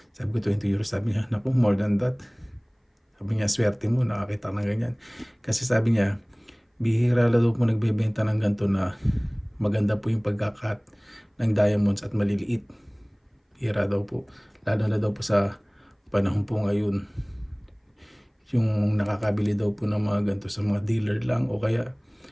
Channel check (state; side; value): identical; both; correlation 1.00